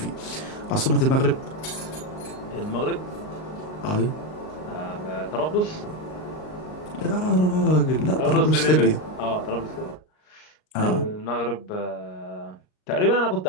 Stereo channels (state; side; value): late; right; 38 ms